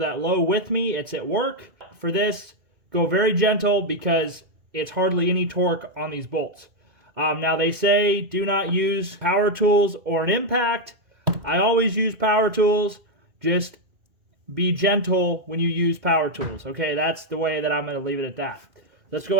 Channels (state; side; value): late; left; 2.1 ms